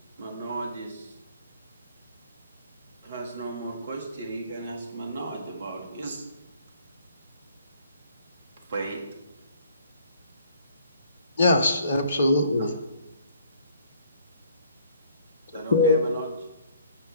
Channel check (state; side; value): inverted; both; correlation -0.59